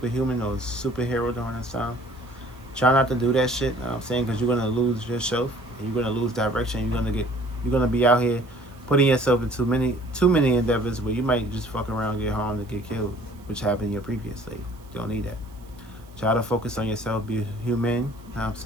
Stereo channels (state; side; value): noise; right; hiss, 29 dB below the sound